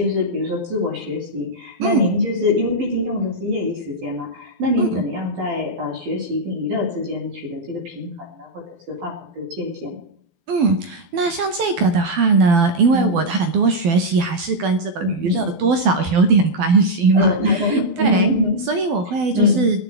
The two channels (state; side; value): late; left; 12 ms